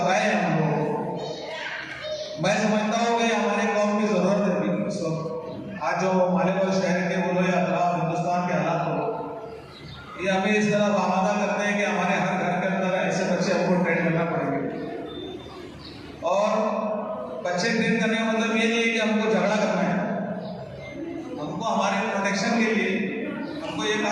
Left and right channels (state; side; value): identical; both; correlation 1.00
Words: हैं हम लोग, मैं समझता हूँ कि हमारे कौम की जरूरत है अभी इस वक्त। आज जो मालेगांव शहर के बोलो या हिंदुस्तान के हालात हो, ये हमें इस तरह आमादा करते हैं कि हमारे हर घर के अंदर ऐसे बच्चे हमको ट्रेन करना पड़ेंगे। और बच्चे ट्रेन करने का मतलब ये नहीं है कि हमको झगड़ा करना है। हमको हमारे प्रोटेक्शन के लिए हमको ये